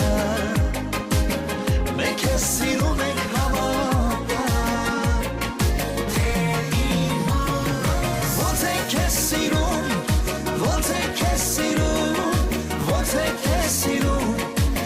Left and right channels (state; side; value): identical; both; correlation 1.00